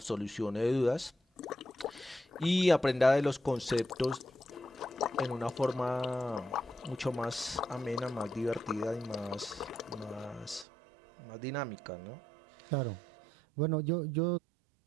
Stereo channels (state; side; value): drops out; left; at 10.7 s